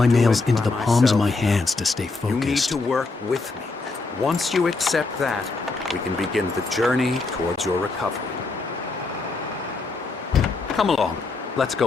can't do nails it into by the palms of myself. my hands to stay You need focused. to work with me. Once you accept that, we can begin the journey towards your recovery. Come along. Let's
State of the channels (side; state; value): right; quieter; 3.7 dB